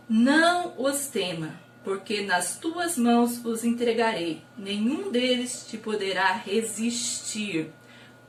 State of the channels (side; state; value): both; identical; correlation 1.00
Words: Não os tema, porque nas tuas mãos os entregarei. Nenhum deles te poderá resistir.